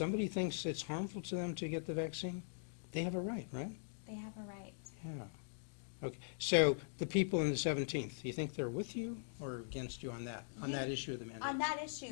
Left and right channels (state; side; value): silent; right; digital silence